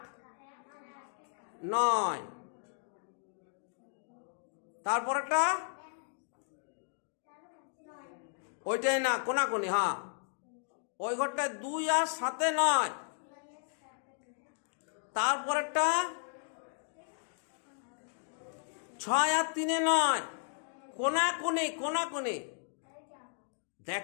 9। তারপরেরটা ওইটাই না, কোনাকুনি, হ্যাঁ ওই ঘরটায় 2 আর 7 9। তারপরেরটা 6 আর 3 9, কোনাকুনি কোনাকুনি।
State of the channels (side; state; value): right; silent; digital silence